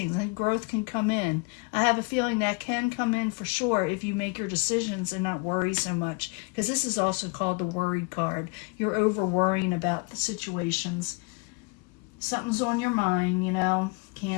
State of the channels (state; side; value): quieter; right; 29.1 dB